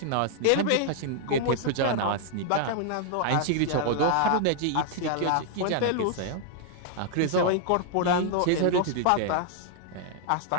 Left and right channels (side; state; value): both; different; correlation 0.00